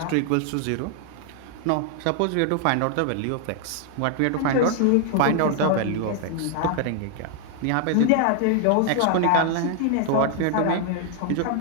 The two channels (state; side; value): different; both; correlation 0.00